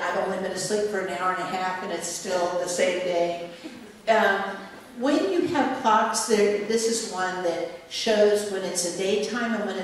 only been asleep for an hour and a half and it's still the same day. When you have clocks, this is one that shows when it's a daytime and when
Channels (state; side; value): identical; both; correlation 1.00